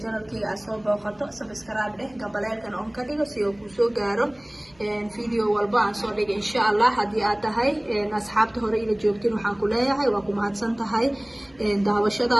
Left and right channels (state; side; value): noise; right; hum, 30 dB below the sound